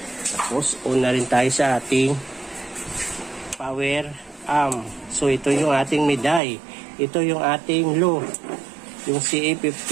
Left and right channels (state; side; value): drops out; left; at 6.4 s